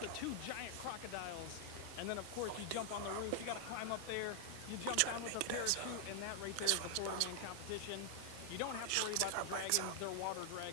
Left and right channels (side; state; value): both; different; correlation 0.00